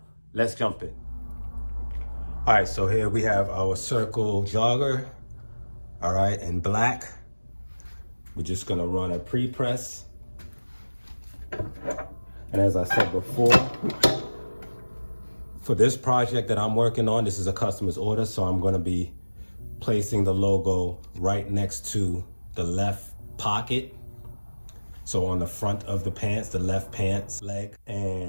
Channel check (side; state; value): both; inverted; correlation -1.00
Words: let's jump in. All right, so here we have our circle jogger. All right, in black. We're just gonna run a pre-press. And as I said before, for this project that I'm working on, this is a customer's order, so I'm gonna be placing the logo right next to the left pocket. So on the front of the pants, the left pants leg,